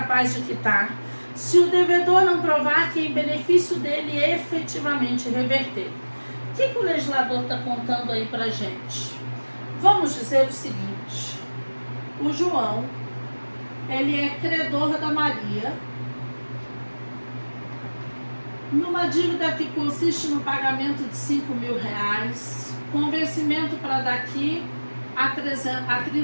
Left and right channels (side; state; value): both; inverted; correlation -1.00